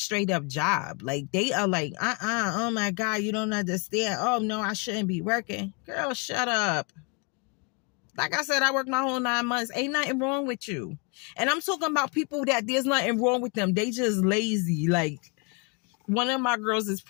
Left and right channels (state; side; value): quieter; right; 31.7 dB